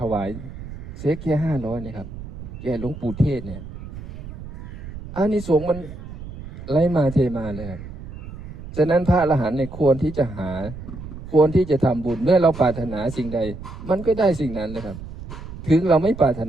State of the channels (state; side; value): noise; right; rumble, 12 dB below the sound